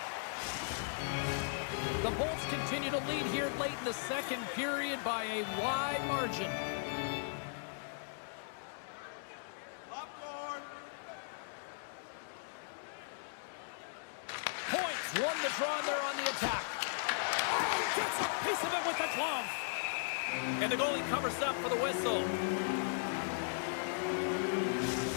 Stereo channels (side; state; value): right; silent; digital silence